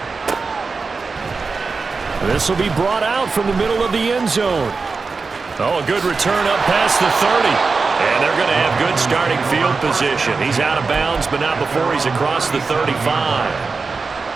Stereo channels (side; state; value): left; quieter; 4.4 dB